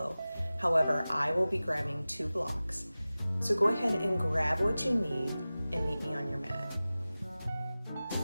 However, I will be grabbing 2 blocks. So go ahead and grab what you need and meet me on your mat.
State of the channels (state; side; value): inverted; both; correlation -0.97